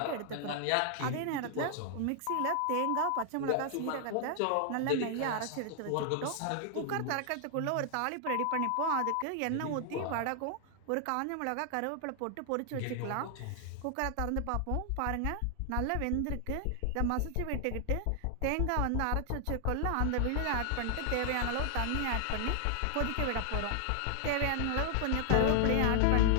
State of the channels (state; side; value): different; both; correlation 0.00